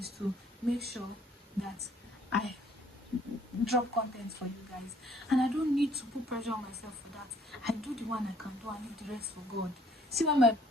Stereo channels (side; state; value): both; normal; correlation 0.60